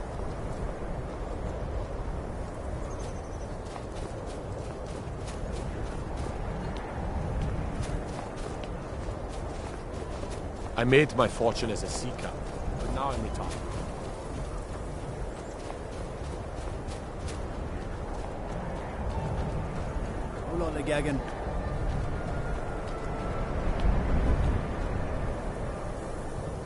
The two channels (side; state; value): both; identical; correlation 1.00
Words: I made my fortune as a sea captain, but now I'm retired. Hold on, Gagan.